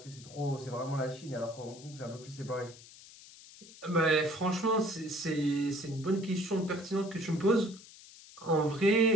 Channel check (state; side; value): noise; left; hiss, 19 dB below the sound